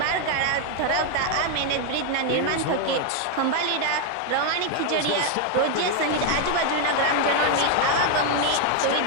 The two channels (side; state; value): both; different; correlation 0.01